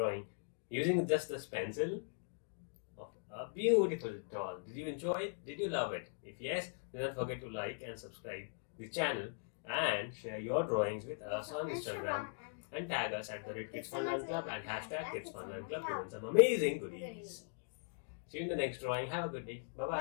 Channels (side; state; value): right; silent; digital silence